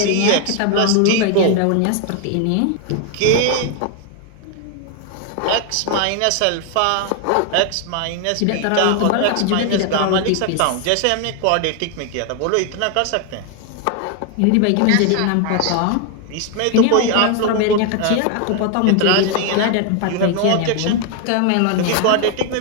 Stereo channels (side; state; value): both; different; correlation 0.00